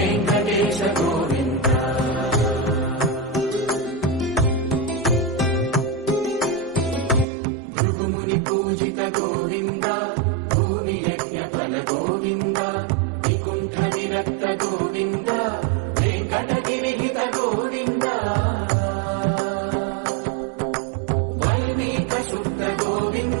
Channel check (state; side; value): drops out; left; at 7.2 s